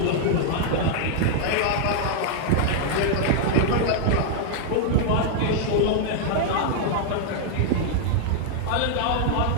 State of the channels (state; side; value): different; both; correlation -0.01